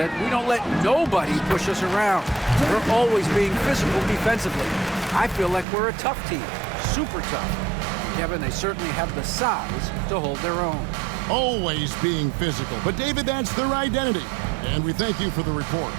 "We don't let nobody push us around. We're always being physical defensively. I feel like we're a tough team, super tough." Kevin, they certainly have the size to hold their own. Always being physical. But, David, that's their identity. And we thank you for the report.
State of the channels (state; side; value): drops out; left; at 5.7 s